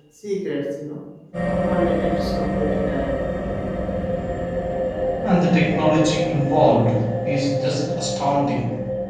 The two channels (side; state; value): both; identical; correlation 1.00